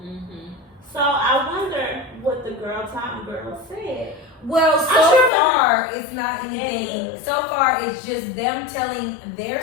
Mm-hmm. So I wonder what the Girl Time girl said. Well, so far it's not anything. So far it's just them telling their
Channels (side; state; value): right; drops out; at 5.3 s